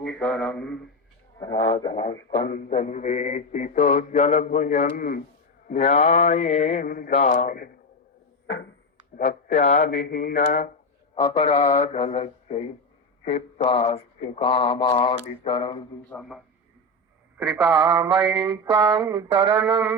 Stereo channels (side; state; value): both; normal; correlation 0.14